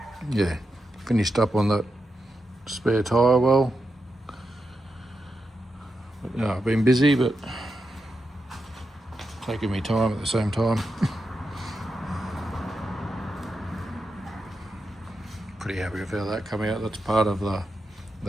yeah, finished up on that spare tyre well. But, no, I've been busy, but taking me time at the same time. Pretty happy with how that come out. That's part of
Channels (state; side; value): normal; both; correlation 0.87